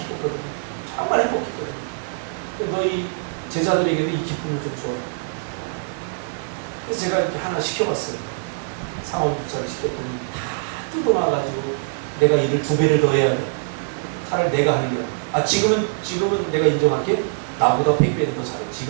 정말 행복했거든요. 너희 제자들에게도 이 기쁨을 좀 줘. 그래서 제가 이렇게 하나 시켜봤어요. 상업부차를 시켰더니 다 뜯어놔가지고 내가 일을 2배를 더 해야 돼. 차라리 내가 하는 게 지금은 내가 인정할게. 나보다 100배는 더 잘해.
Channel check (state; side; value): silent; left; digital silence